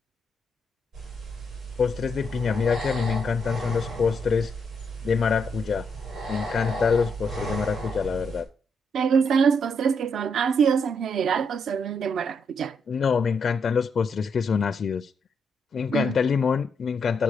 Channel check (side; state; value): both; normal; correlation 0.77